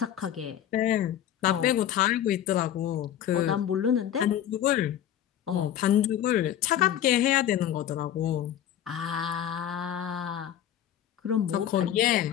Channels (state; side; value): quieter; right; 10.8 dB